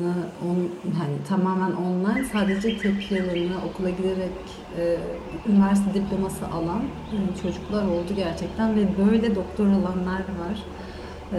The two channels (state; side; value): identical; both; correlation 1.00